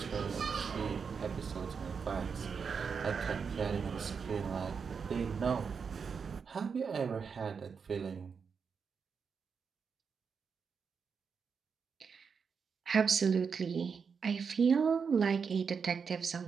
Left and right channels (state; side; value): quieter; left; 5.9 dB